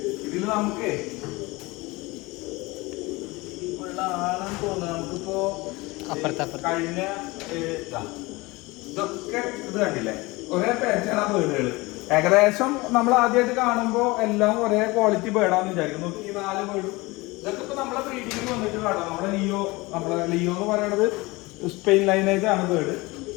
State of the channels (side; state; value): right; quieter; 22.8 dB